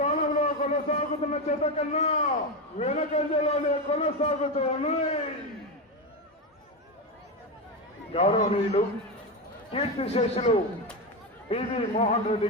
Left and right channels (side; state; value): both; normal; correlation 0.13